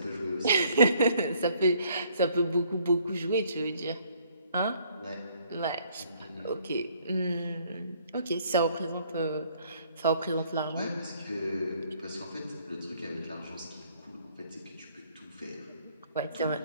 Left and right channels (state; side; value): inverted; both; correlation -0.63